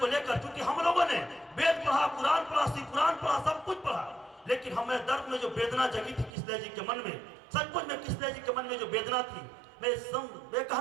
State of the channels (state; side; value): drops out; left; at 6.3 s